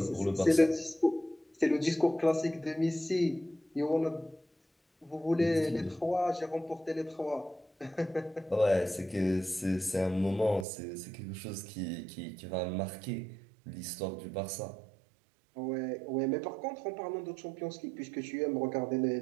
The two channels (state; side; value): drops out; left; at 10.7 s